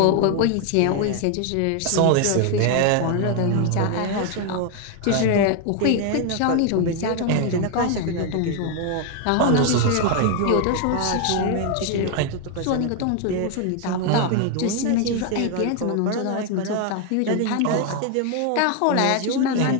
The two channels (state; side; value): different; both; correlation 0.01